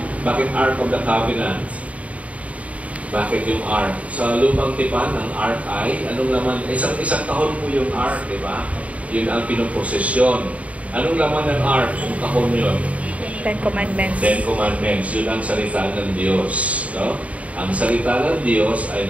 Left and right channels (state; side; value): late; left; 0.067 ms